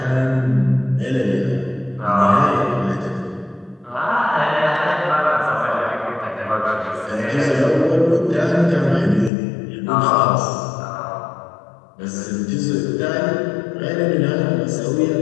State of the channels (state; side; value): drops out; right; at 9.3 s